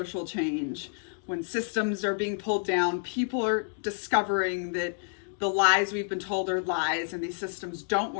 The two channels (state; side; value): silent; right; digital silence